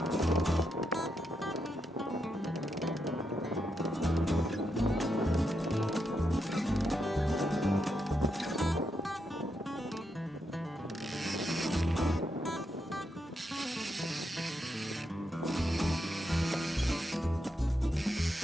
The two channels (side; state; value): both; normal; correlation 0.82